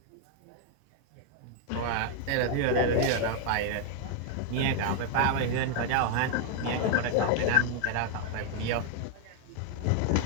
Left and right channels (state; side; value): different; both; correlation 0.00